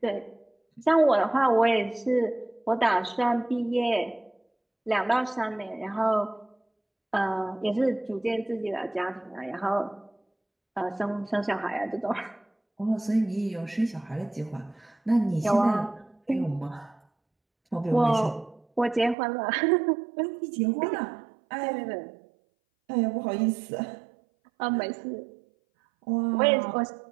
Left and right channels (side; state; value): left; drops out; at 19.2 s